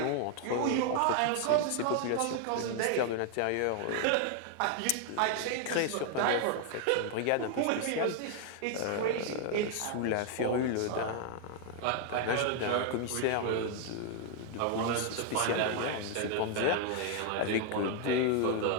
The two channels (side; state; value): both; different; correlation 0.00